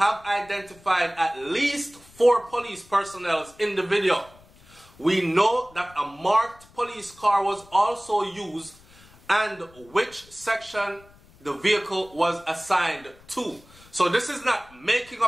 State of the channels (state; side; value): noise; left; rumble, 26 dB below the sound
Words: identified at least 4 police personnel in the video. We know that a marked police car was also used and which section the vehicle was assigned to. So this is not making